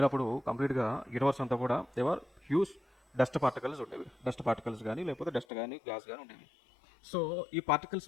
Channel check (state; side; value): drops out; right; at 5.5 s